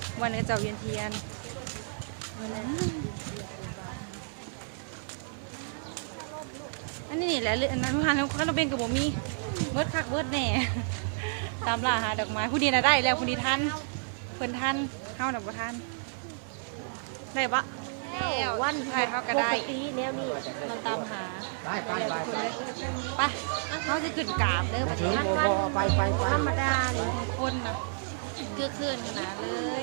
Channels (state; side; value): silent; left; 57 dB below the other